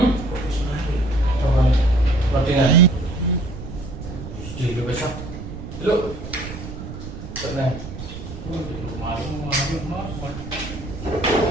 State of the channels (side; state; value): right; noise; rumble, 10 dB below the sound